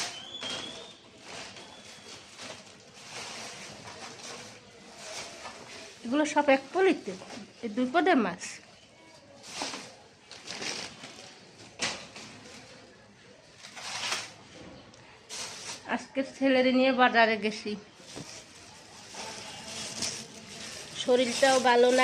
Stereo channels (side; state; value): both; identical; correlation 1.00